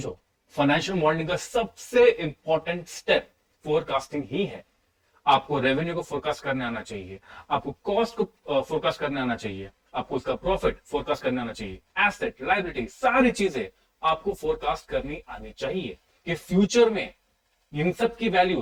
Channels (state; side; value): identical; both; correlation 1.00